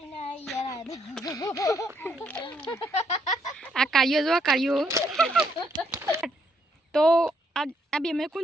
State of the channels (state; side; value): normal; both; correlation 0.73